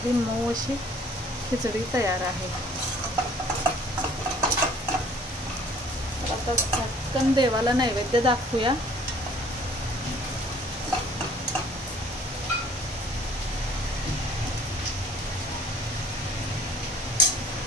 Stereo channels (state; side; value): normal; both; correlation 0.55